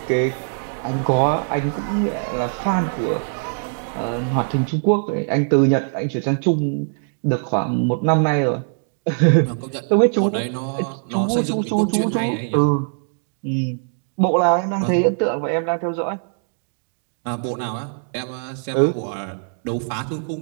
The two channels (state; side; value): silent; left; digital silence